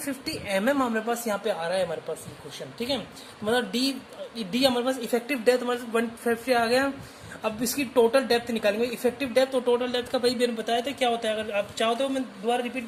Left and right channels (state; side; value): identical; both; correlation 1.00